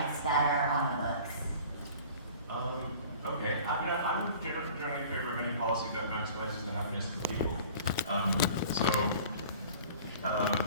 that are on the books. Okay. I'm generally in favor of any policy that maximizes the happiness of the people.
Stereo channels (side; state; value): both; inverted; correlation -0.45